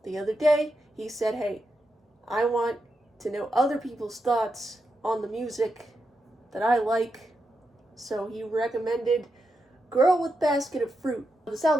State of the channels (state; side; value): normal; both; correlation 0.86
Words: the other day he said, hey, I want to know other people's thoughts on the music that I like, so he recommended Girl with Basket of Fruit. This